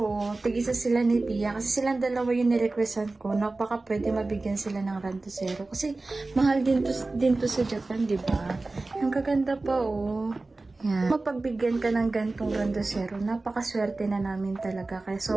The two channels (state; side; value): quieter; left; 3.3 dB